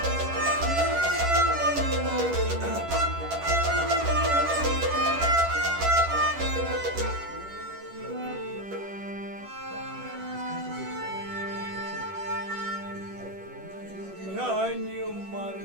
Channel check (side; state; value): left; late; 10 ms